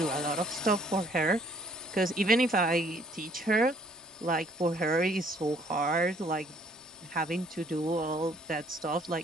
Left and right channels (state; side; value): normal; both; correlation 0.62